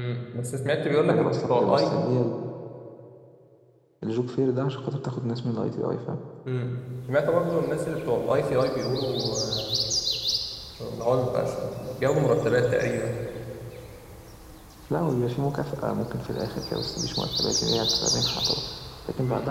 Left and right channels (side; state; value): both; identical; correlation 1.00